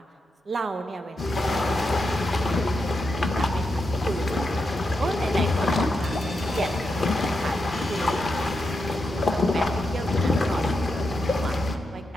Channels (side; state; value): both; normal; correlation 0.86